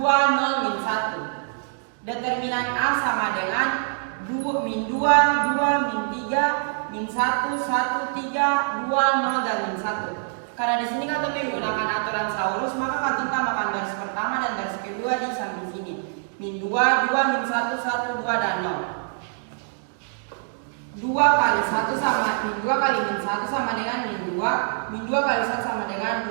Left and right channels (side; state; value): left; silent; digital silence